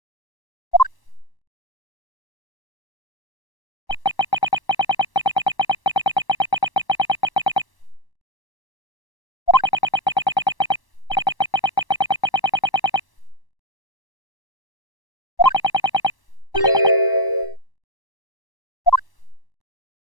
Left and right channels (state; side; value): late; right; 1.1 ms